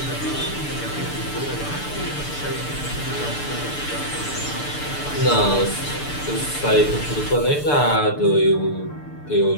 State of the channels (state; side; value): late; right; 6.8 ms